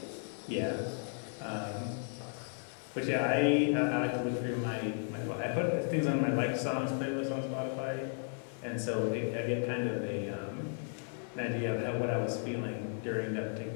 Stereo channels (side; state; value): right; silent; 55 dB below the other